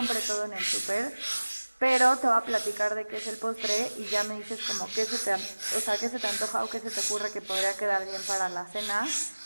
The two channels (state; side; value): inverted; both; correlation -1.00